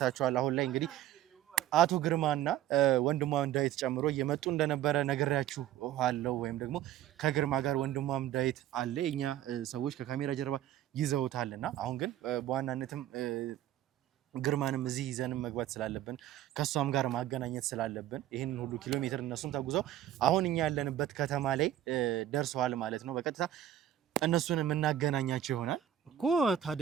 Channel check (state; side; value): quieter; left; 12.0 dB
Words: አሁን ላይ እንግዲህ አቶ ግርማና ወንድሟም ዳዊት ጨምሮ እየመጡ እንደነበረ ነግሬያችሁ አለው። ወይም ደግሞ ከግርማ ጋር ወንድሟም ዳዊት አለ። የኛ ሰዎች ከካሜራ ጀርባ ይዘውታልና አሁን ግን በዋናነትም ግርማንም እዚህ ይዘንም መግባት ስላለብን ከሷም ጋር ማገናኘት ስላለብን ይሄንን ሁሉ ኪሎ ሜትር እነሱም ተጉዘው አሁን እኛ ያለንበት ከተማ ላይ ደርሰዋል ማለት ነው። በቀጥታ እነሱን የምናገናኛቸው ይሆናል እኮ።